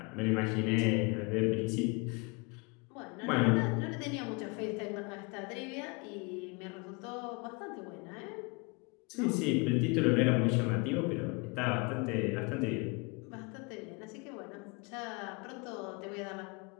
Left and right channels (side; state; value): right; quieter; 29.9 dB